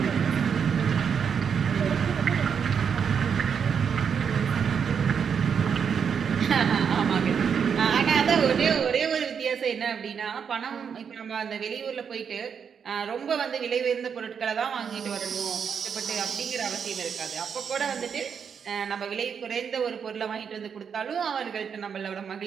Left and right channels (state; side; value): quieter; left; 7.0 dB